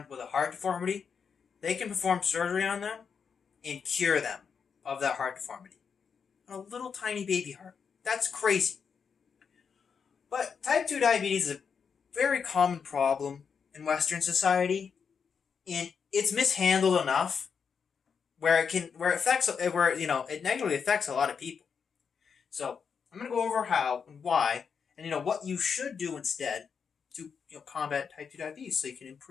with a heart deformity, they can perform surgery on them and cure them of that heart deformity. A little tiny baby heart. That's crazy. But type 2 diabetes is a very common problem in Western society, and it's mishandled enough where it negatively affects a lot of people. So I'm going to go over how and why, and what you should do instead to combat type 2 diabetes, so you can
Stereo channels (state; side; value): quieter; right; 6.3 dB